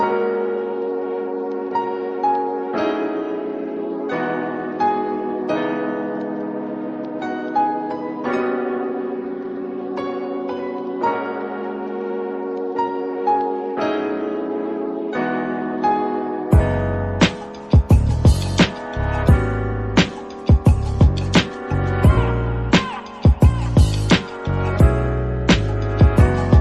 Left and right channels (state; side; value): identical; both; correlation 1.00